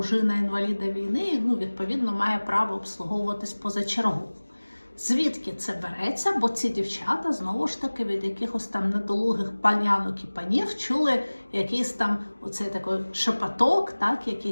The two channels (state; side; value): inverted; both; correlation -1.00